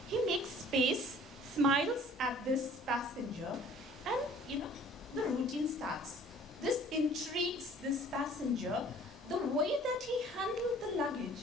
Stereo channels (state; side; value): normal; both; correlation 0.52